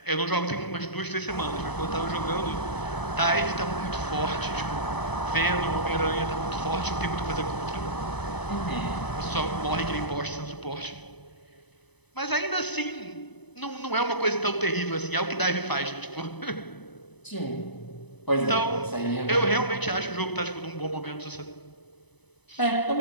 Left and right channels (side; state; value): right; late; 0.99 ms